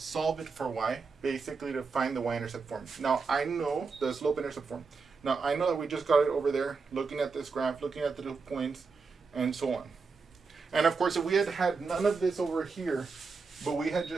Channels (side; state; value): left; quieter; 4.7 dB